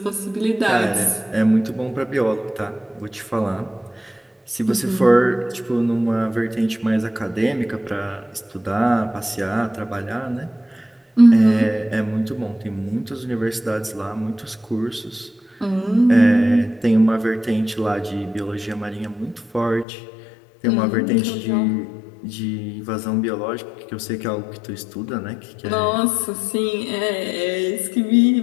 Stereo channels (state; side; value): drops out; right; at 19.9 s